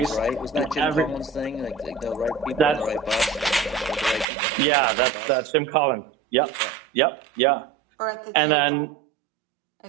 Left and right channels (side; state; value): left; drops out; at 4.2 s